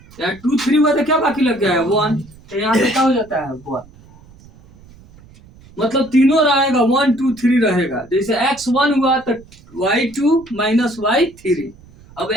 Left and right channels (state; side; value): noise; right; rumble, 24 dB below the sound